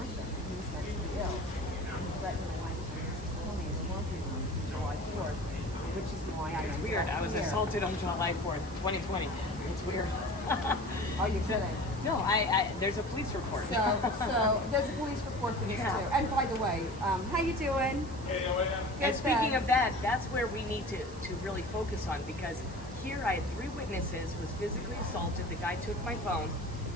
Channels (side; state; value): right; noise; hiss, 20 dB below the sound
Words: He was mentally ill. And he threatened my wife to kill me in the laundry room July July 4th, which is why I It's weird. I was assaulted on July 4th, 2020. It's weird. Are you kidding? No, there's a police report. So there's a police report for this too. And by the way, how you doing? And speaking of that, that's where we need to really focus on, because here I had 3 witnesses, was physically assaulted. The guy took my phone.